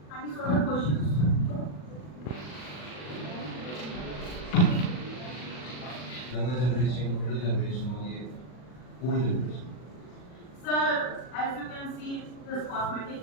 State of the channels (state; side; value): late; right; 40 ms